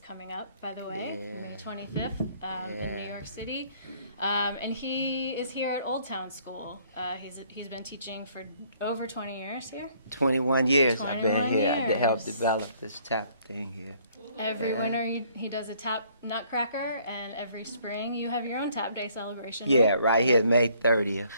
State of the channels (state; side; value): inverted; both; correlation -0.62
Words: coming up, by the way, May 25th in New York City. And he is here at Old Town School. He's been teaching for over 20 years here. 21 years I've been 21 here to help years. develop this tap thing here. Every winter he does a tap nutcracker, and every spring you have your own tap day celebration. Yeah, right here, May 30th.